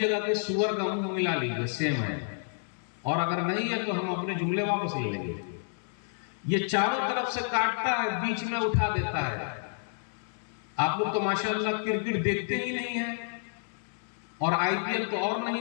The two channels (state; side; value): silent; right; 58 dB below the other